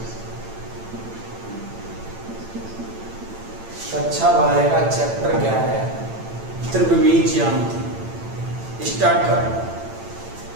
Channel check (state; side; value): late; left; 8.9 ms